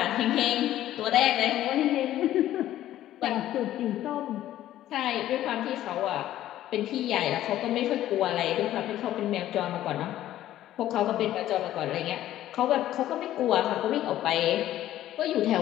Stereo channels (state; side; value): quieter; right; 13.2 dB